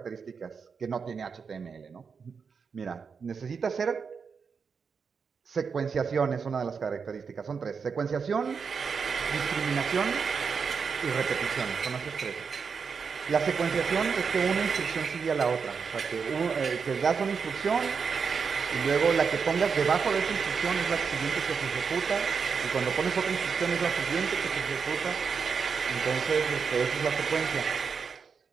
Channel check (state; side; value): quieter; left; 5.8 dB